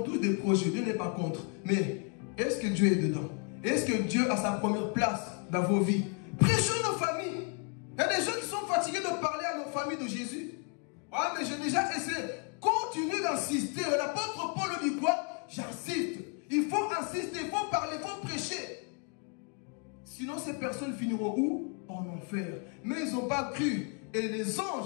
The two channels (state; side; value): quieter; right; 37.8 dB